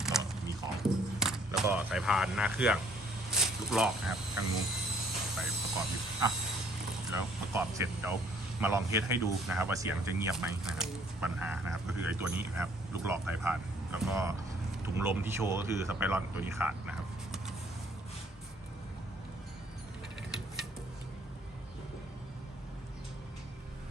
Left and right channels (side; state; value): both; normal; correlation 0.61